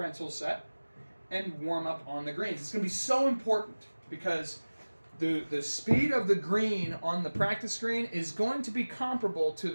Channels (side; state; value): both; inverted; correlation -1.00